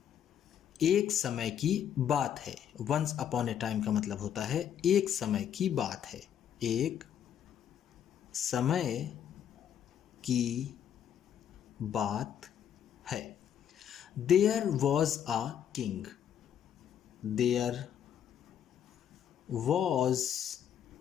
एक समय की बात है। वंस अपॉन ए टाइम का मतलब होता है एक समय की बात है, एक समय की बात है। There was a king, there was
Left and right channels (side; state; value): right; quieter; 9.3 dB